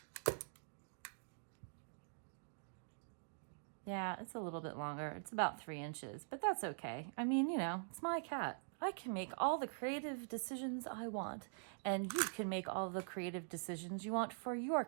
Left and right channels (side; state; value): left; silent; digital silence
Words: Yeah, it's a little bit longer. It's about 3 inches, but that's okay. I mean, you know, it's my cat. I can make all the creative decisions I want, and you can make all the creative decisions you want for your